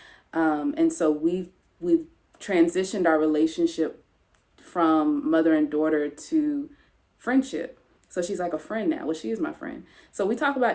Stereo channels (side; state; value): both; identical; correlation 1.00